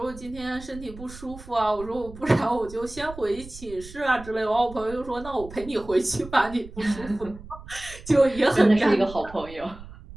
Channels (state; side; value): noise; right; rumble, 16 dB below the sound